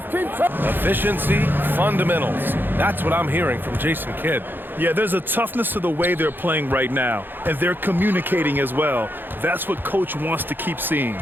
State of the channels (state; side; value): late; left; 0.096 ms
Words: Keep trying. Efficiency, fundamentals. That's what I'm hearing from Jason Kidd. Yeah, there's a toughness to the way they're playing right now, and they're communicating as well. That's what Coach wants to keep seeing.